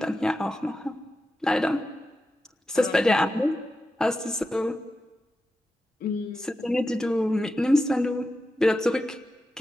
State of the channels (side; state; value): both; normal; correlation 0.90